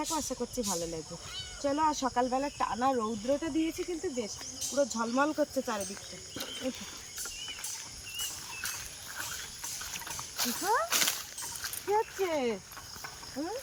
আশা করছি ভালো লাগবে। চলো। আর সকালবেলা টানা রৌদ্রটা দিয়েছে কিন্তু বেশ, পুরো ঝলমল করছে চারিদিকটা। চিকু কি হচ্ছে?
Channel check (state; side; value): identical; both; correlation 1.00